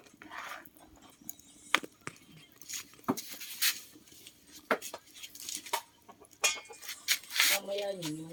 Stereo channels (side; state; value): both; identical; correlation 1.00